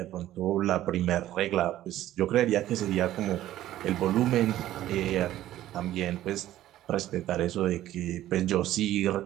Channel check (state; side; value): quieter; left; 13.7 dB